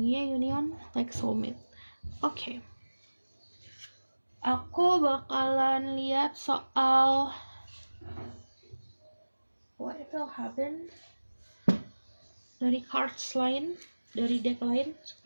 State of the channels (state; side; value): inverted; both; correlation -1.00